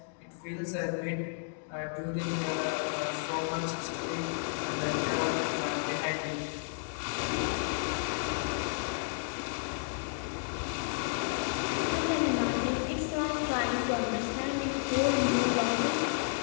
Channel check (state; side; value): silent; right; digital silence